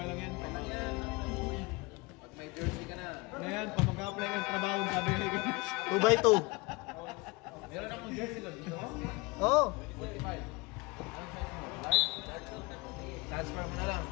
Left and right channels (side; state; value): right; quieter; 25.3 dB